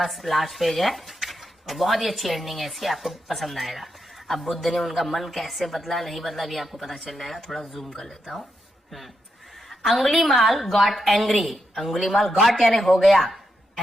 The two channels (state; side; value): normal; both; correlation 0.84